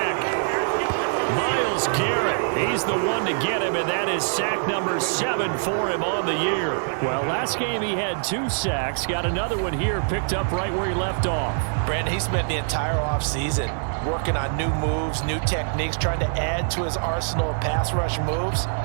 Myles Garrett, he's the one to get him, and that is sack number 7 for him on the year. Well, last game he had 2 sacks. Got another one here, picked up right where he left off. Brandon, he spent the entire offseason working on new moves, new techniques, trying to add to his arsenal of pass rush moves.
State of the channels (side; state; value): left; silent; digital silence